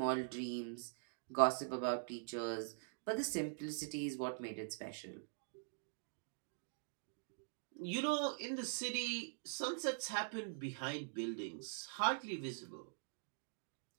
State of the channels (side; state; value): left; silent; digital silence